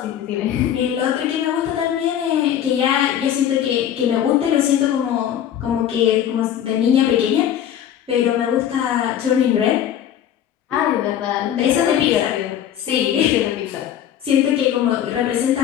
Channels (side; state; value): right; quieter; 10.3 dB